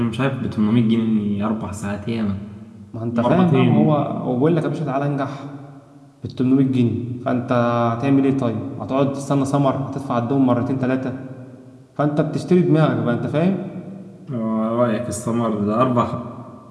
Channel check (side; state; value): both; identical; correlation 1.00